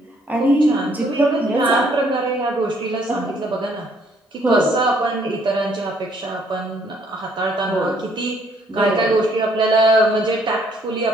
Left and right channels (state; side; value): normal; both; correlation 0.66